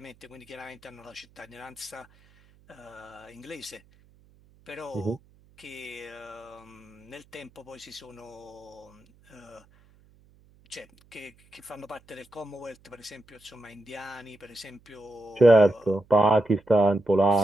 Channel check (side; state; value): right; noise; hum, 29 dB below the sound